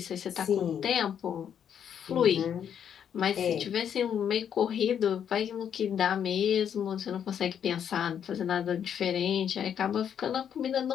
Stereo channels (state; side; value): quieter; right; 8.6 dB